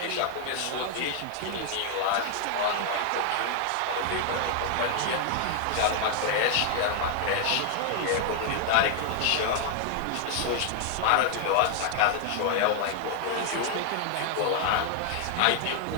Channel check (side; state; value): both; different; correlation 0.00